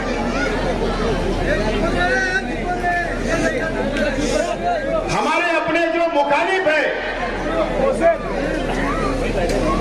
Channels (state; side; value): identical; both; correlation 1.00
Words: हमारे अपने जो मुखालिफ है,